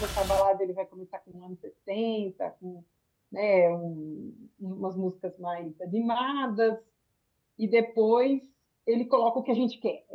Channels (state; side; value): identical; both; correlation 1.00